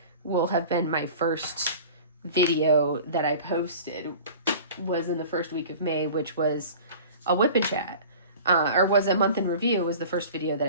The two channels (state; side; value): inverted; both; correlation -0.41